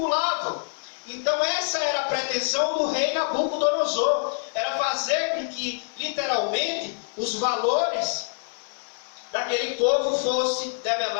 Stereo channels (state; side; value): silent; right; digital silence